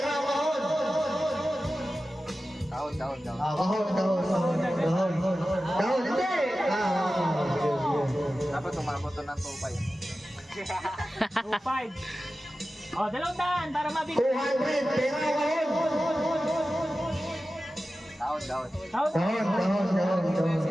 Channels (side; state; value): both; normal; correlation 0.94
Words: kahon. Kahon. Kahon, hindi. Dapat umabot to ng 2.5. 2.5. O, 200 para mabigay. 200, pero kahon. Kahon. Kahon.